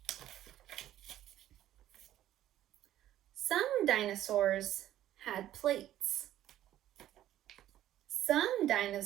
Some dinosaurs had plates. Some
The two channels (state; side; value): quieter; left; 12.7 dB